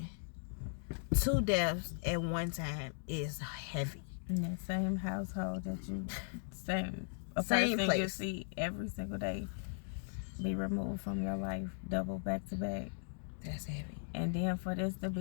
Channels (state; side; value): silent; right; digital silence